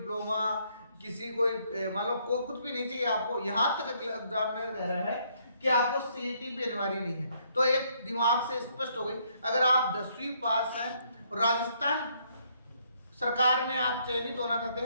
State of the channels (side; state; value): both; inverted; correlation -0.70